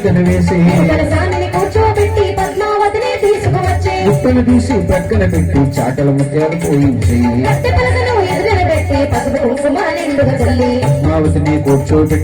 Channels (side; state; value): both; identical; correlation 1.00